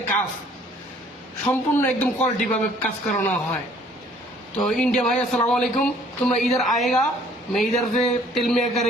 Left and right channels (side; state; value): both; normal; correlation 0.58